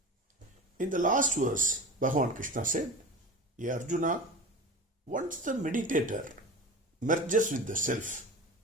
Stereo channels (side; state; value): both; normal; correlation 0.33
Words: In the last verse, Bhagavan Krishna said, "Ye Arjuna, once the meditator merges with the self,